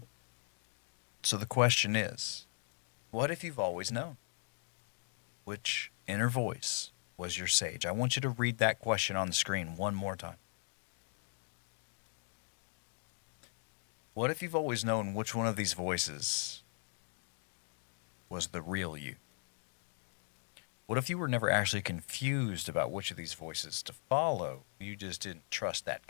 So the question is, what if you've always known which inner voice was your sage? I want you to read that question on the screen one more time. What if you've always known which one of these voices was the real you? What if you were never actually confused about which of these voices to follow? You just didn't trust that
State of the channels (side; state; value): right; silent; 52 dB below the other